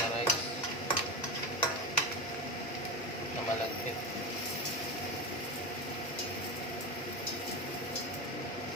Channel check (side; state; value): both; normal; correlation 0.20